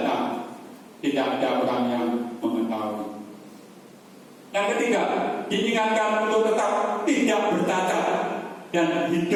tidak ada orang yang mengetahui. Yang ketiga, diingatkan untuk tetap tidak bercacat dan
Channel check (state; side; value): identical; both; correlation 1.00